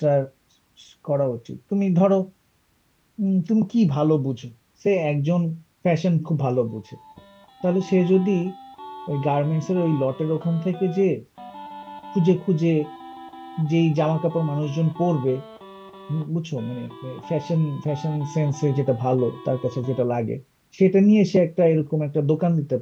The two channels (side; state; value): both; identical; correlation 1.00